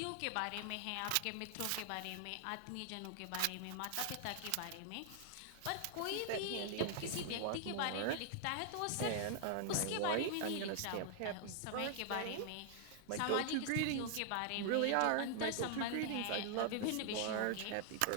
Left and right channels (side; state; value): both; different; correlation 0.00